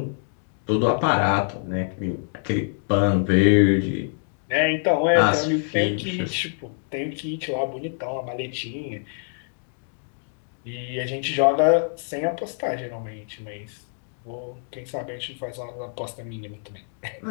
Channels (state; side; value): silent; right; digital silence